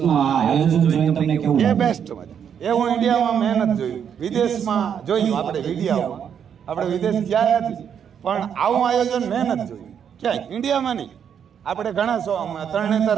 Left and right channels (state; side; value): quieter; left; 8.1 dB